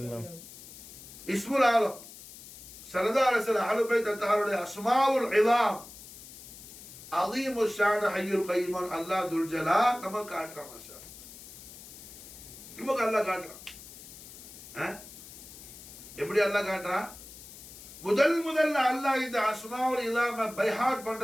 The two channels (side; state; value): left; noise; hiss, 16 dB below the sound